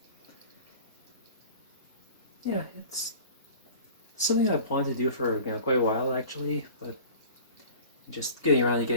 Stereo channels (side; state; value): both; inverted; correlation -0.42